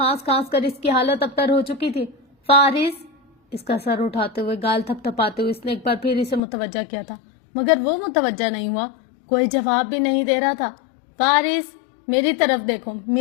کھانس کر اس کی حالت ابتر ہو چکی تھی۔ فارس، اس کا سر اٹھاتے ہوئے، گال تھپ تھپاتے ہوئے اس نے ایک بار پھر اسے متوجہ کیا تھا، مگر وہ متوجہ نہیں ہوا، کوئی جواب بھی نہیں دے رہا تھا۔ فارس، میری طرف دیکھو،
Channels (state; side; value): drops out; right; at 6.4 s